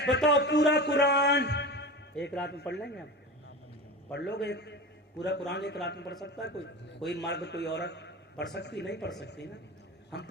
بتاؤ پورا قرآن ایک رات میں پڑھ لیں گے؟ آپ پڑھ لو گے پورا قرآن ایک رات میں پڑھ سکتا ہے کوئی مرد کوئی عورت پڑھ سکتی؟ نہیں پڑھ سکتی نا۔ ہم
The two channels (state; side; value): normal; both; correlation 0.30